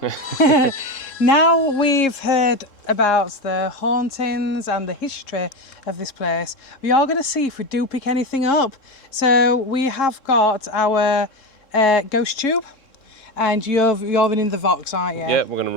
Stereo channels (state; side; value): late; right; 3.7 ms